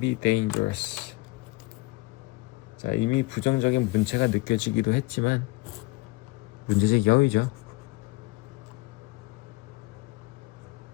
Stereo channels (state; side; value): quieter; right; 22.2 dB